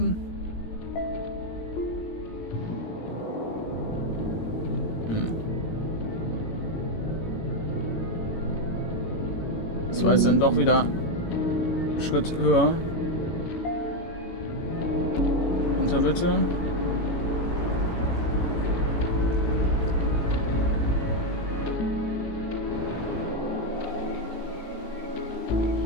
Das war jetzt dann doch wieder einen Schritt höher. Runter bitte.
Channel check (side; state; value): right; late; 18 ms